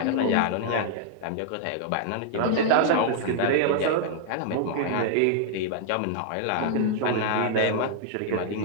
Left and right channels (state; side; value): different; both; correlation -0.01